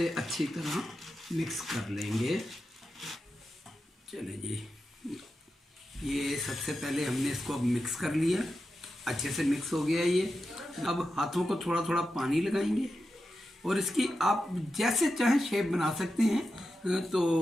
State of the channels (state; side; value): normal; both; correlation 0.90